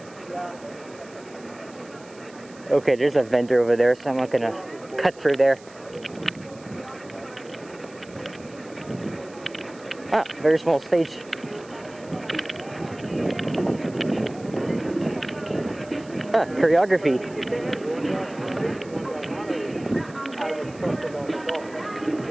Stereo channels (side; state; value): right; noise; hiss, 24 dB below the sound